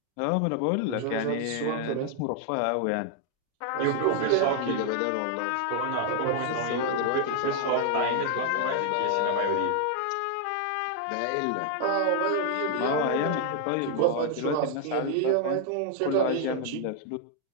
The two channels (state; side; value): different; both; correlation 0.00